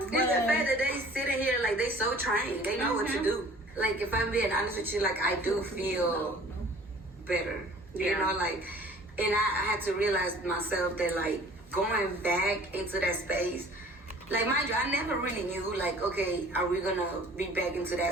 the fact that they sitting here like they so trained. They know what to do. Like, if I'm being honest with you, like, I do feel better. Yeah. You know, like, and I had to realize myself that, like, going back into that space, like, mind you, I never really knew, like, okay, are we gonna be back into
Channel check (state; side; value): normal; both; correlation 0.49